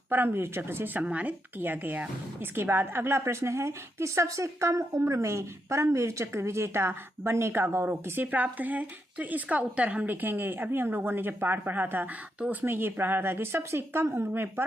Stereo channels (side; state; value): both; normal; correlation 0.82